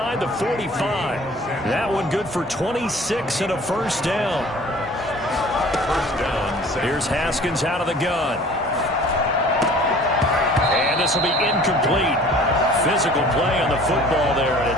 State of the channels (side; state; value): both; normal; correlation 0.48